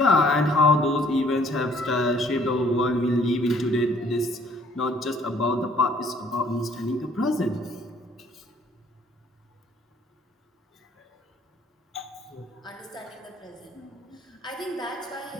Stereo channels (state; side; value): normal; both; correlation 0.60